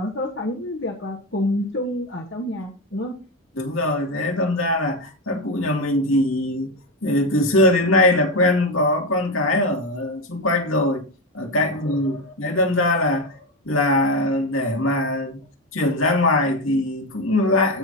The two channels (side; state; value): both; normal; correlation 0.14